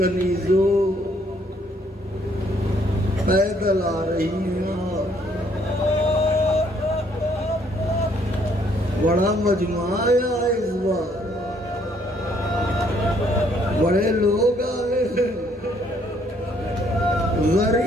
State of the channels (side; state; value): both; normal; correlation 0.66